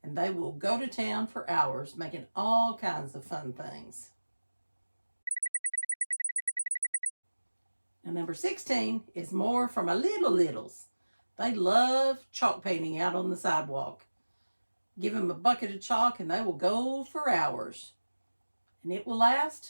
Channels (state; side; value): inverted; both; correlation -1.00